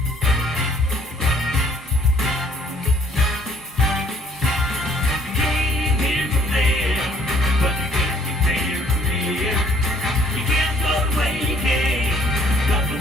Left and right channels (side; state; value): both; normal; correlation 0.61